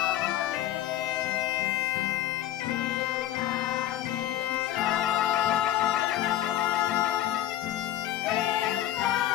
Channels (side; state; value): right; quieter; 13.1 dB